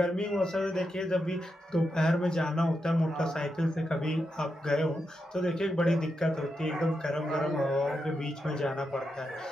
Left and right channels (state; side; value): normal; both; correlation 0.86